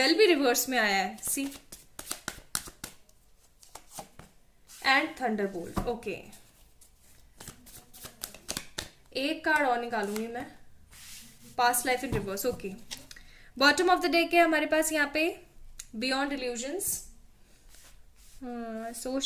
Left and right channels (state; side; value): identical; both; correlation 1.00